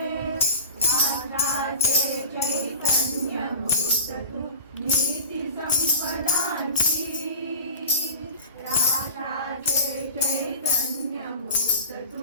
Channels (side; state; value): both; inverted; correlation -0.39